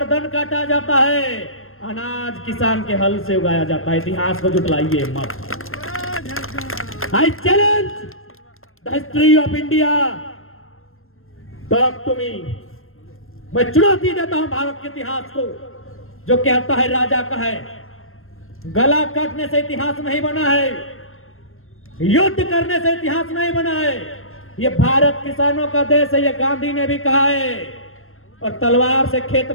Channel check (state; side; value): late; right; 0.61 ms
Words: काटा जाता है, अनाज किसान के हल से उगाया जाता है। इतिहास को जुटलाइए मत। I challenge the history of India, talk to me. मैं चुनौती देता हूं भारत के इतिहास को, जो कहता है राजा का है। गला काटने से इतिहास नहीं बना है, युद्ध करने से इतिहास नहीं बना है। ये भारत किसानों का देश है, ये गांधी ने भी कहा है। और तलवार से खेत